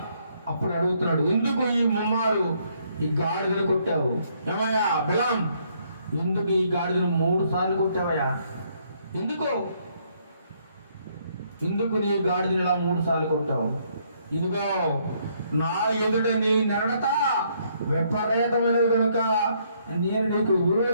అప్పుడు అడుగుతున్నాడు, ఎందుకు ఈ ముమ్మారు ఈ గాడిదను కొట్టావు? ఏమయ్యా బిలాం, ఎందుకు ఈ గాడిదను 3 సార్లు కొట్టావయ్యా? ఎందుకు? ఎందుకు నీ గాడిదని ఇలా 3 సార్లు కొట్టావు? ఇదిగో నా ఎదుట నీ నడత విపరీతమైనది కనుక నేను నీకు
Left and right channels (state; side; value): inverted; both; correlation -0.70